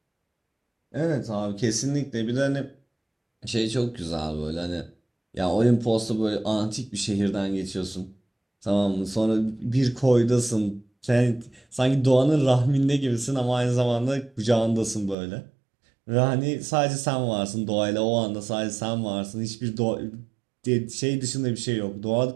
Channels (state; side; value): drops out; left; at 15.2 s